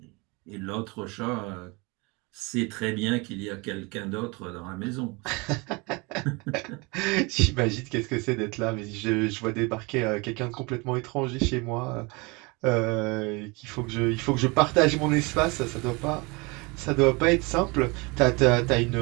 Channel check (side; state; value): left; quieter; 27.4 dB